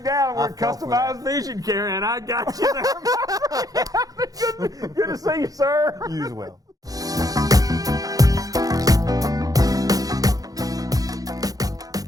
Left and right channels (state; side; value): late; left; 0.18 ms